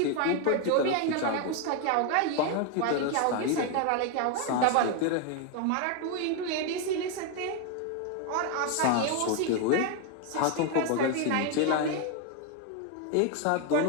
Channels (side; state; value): both; different; correlation 0.01